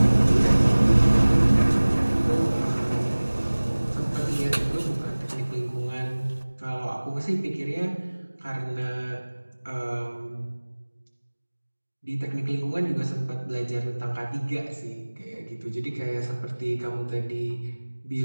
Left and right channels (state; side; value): inverted; both; correlation -1.00